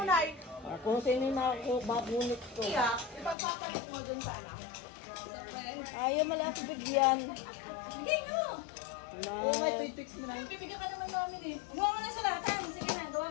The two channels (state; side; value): drops out; right; at 3.4 s